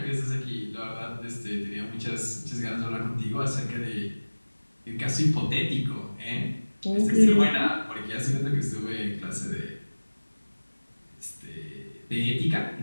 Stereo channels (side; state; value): both; inverted; correlation -1.00